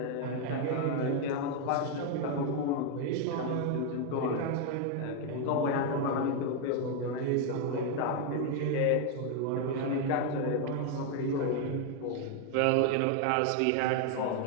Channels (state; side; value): different; both; correlation 0.01